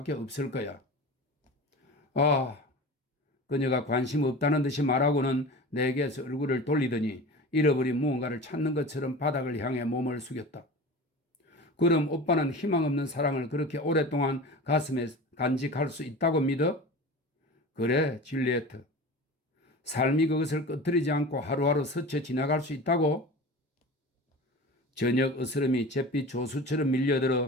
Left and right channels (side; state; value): both; normal; correlation 0.34